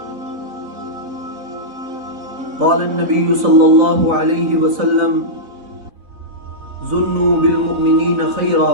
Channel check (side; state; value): left; late; 4.2 ms